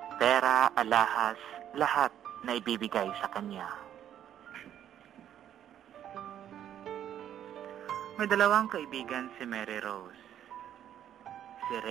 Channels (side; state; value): left; quieter; 10.5 dB